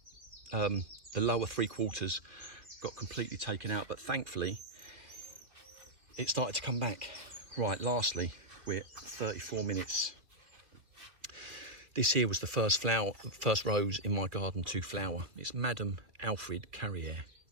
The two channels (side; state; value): left; late; 2.9 ms